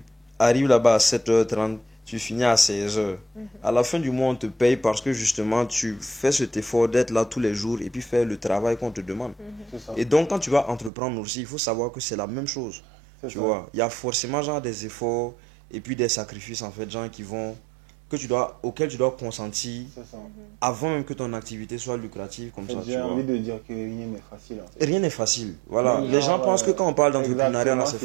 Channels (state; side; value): drops out; left; at 10.9 s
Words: arrives là-bas à 7h30, tu finis à 16h. À la fin du mois, on te paye parce que justement, tu fais cet effort d'être là tous les jours et puis faire le travail qu'on te demande. C'est ça. Et donc, quand tu vas entreprendre aussi, il faut savoir que c'est la même chose. C'est Tu ça. vois, il y a forcément genre des efforts et puis des sacrifices en fait, gens qui vont, auxquels tu dois consentir C'est ça. avant même que ton activité soit lucrative comme ça. Tu J'ai vois. envie de dire que rien n'est facile en fait. Rien n'est facile. Voilà. Oui, Les gens genre, pensent que quand on parle d'entrepreneuriat, là, c'est